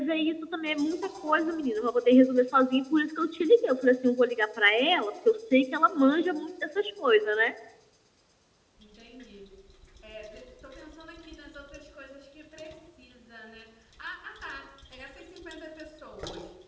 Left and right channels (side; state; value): both; identical; correlation 1.00